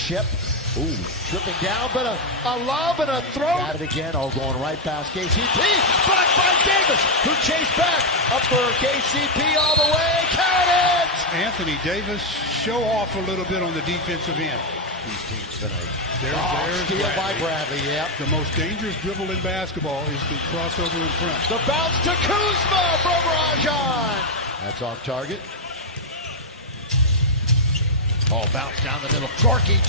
Ooh, tripping down, but a lob and a throw. Got it again, going right past KCP. Blocked by Davis, who chased back. Up for KCP all the way, count it! Anthony Davis, show off a little bit on the defensive end. These teams tonight. There's steal by Bradley, yep. The most dangerous dribble in basketball is the crossover in front. The bounce to Kuzma from Rajon. That's off target. Oh, bounce down the middle. Gorky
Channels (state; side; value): normal; both; correlation 0.02